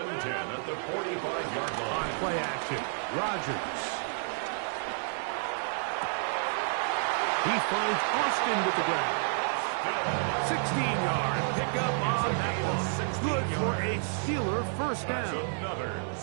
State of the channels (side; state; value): left; silent; digital silence